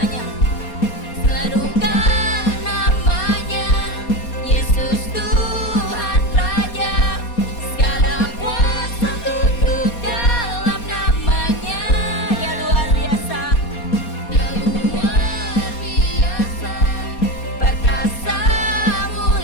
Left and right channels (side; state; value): right; late; 4.2 ms